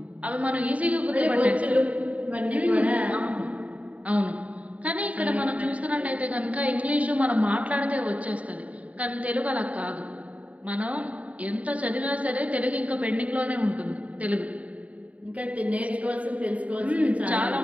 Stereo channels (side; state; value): left; late; 0.068 ms